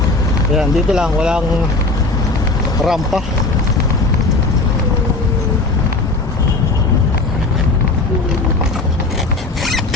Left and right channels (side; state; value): right; quieter; 3.3 dB